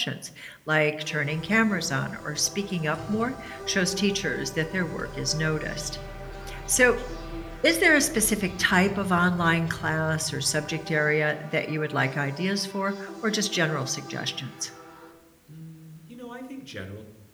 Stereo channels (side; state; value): both; identical; correlation 1.00